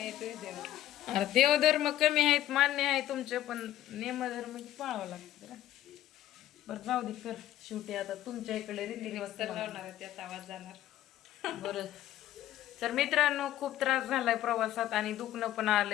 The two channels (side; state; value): right; quieter; 13.2 dB